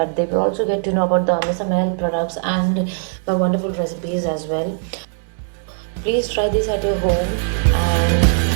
they will also get to know about the MSML products and my wonderful recipes as well. Please try this at your home, and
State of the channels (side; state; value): left; silent; 66 dB below the other